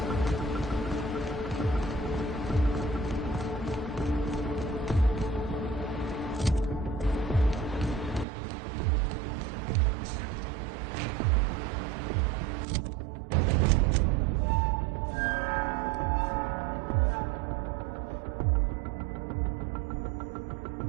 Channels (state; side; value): drops out; left; at 8.2 s